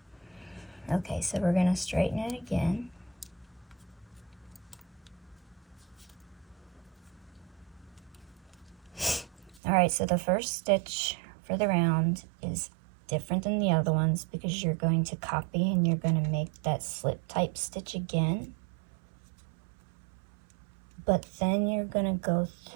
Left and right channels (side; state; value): left; drops out; at 9.6 s